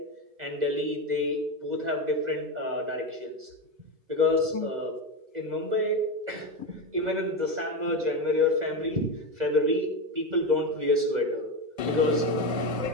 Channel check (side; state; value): left; late; 2.0 ms